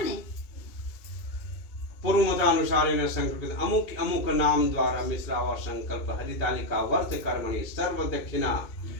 पूर्व मतानुसार इन संकल्पित अमुक अमुक नाम द्वारा मिश्रावा संकल्प हरितालिका वर्त कर्मणि सर्व दक्षिणा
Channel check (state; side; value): late; right; 2.6 ms